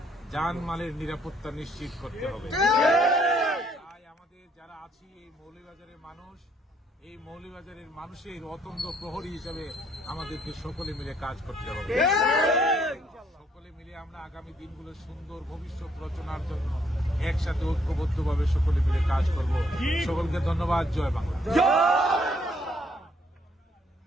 জানমালের নিরাপত্তা নিশ্চিত করতে হবে। তাই আমাদের যারা আছি এই মৌলভীবাজারের মানুষ, এই মৌলভীবাজারের মানুষের অতন্দ্র প্রহরী হিসেবে আমাদেরকে সকলে মিলে কাজ করতে হবে। সকলে মিলে আমরা আগামী দিনগুলো সুন্দর ভবিষ্যৎ রচনার জন্য একসাথে ঐক্যবদ্ধভাবে সকলে মিলে কাজ করব। সকলকে ধন্যবাদ। জয় বাংলা।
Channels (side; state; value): both; normal; correlation 0.68